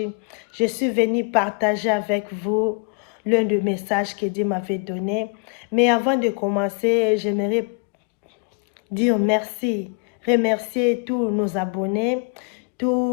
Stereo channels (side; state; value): right; quieter; 35.9 dB